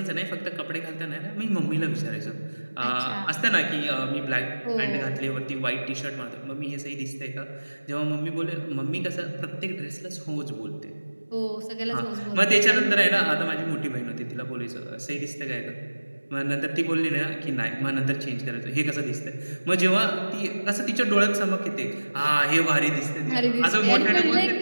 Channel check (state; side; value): inverted; both; correlation -1.00